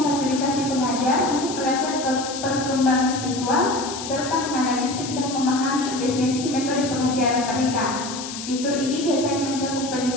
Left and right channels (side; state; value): left; noise; hiss, 9 dB below the sound